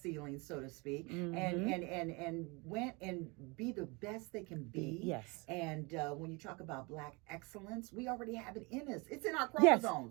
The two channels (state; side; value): quieter; left; 28.0 dB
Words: so to speak, and went and be the best they can be. Yes. And when you talk about Black excellence, we already have it in us. It's in our